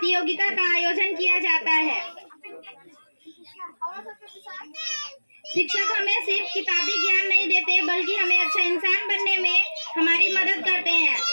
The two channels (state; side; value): inverted; both; correlation -1.00